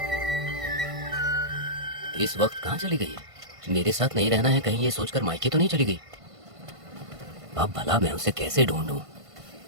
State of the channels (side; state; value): left; late; 1.5 ms